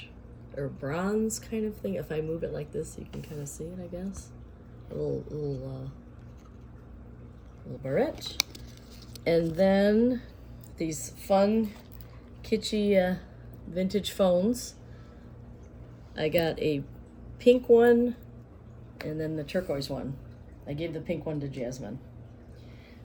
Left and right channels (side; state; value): both; identical; correlation 1.00